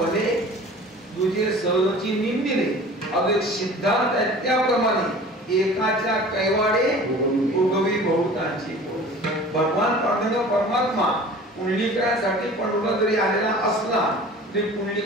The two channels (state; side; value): normal; both; correlation 0.43